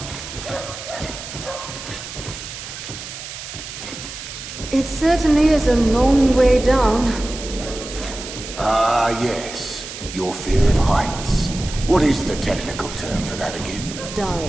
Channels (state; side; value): noise; right; hiss, 10 dB below the sound